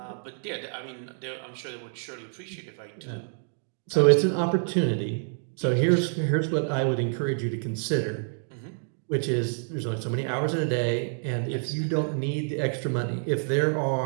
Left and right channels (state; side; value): silent; left; digital silence